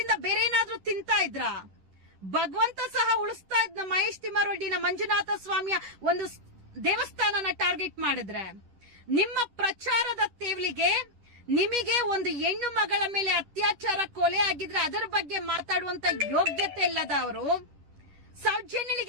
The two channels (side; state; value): left; late; 10 ms